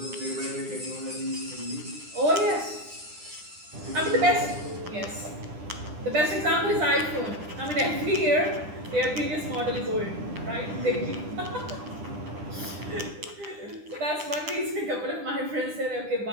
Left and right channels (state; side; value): late; left; 9.9 ms